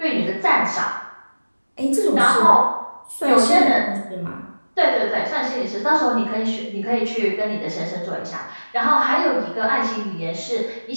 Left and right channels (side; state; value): both; inverted; correlation -1.00